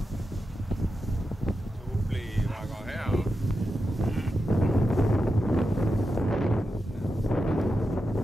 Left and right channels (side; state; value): both; normal; correlation 0.89